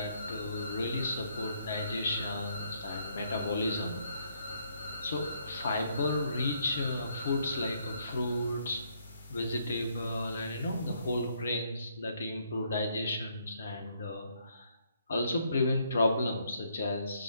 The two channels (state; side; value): inverted; both; correlation -0.71